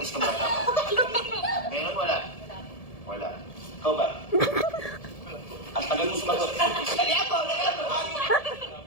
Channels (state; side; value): late; right; 1.7 ms